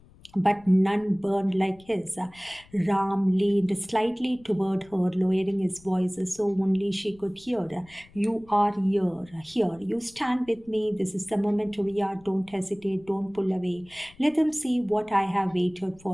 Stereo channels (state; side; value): noise; left; rumble, 26 dB below the sound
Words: but none burned like his. Ram leaned slightly toward her, lowering his voice so only she could hear. You are here. You stand with me. This is the moment, Ria. Don't hesitate. Don't pull away. Let them see what I have waited